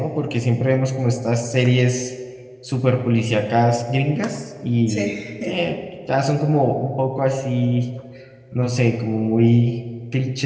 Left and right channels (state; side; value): identical; both; correlation 1.00